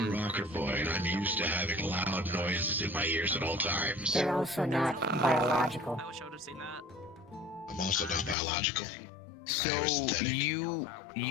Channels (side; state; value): right; drops out; at 8.3 s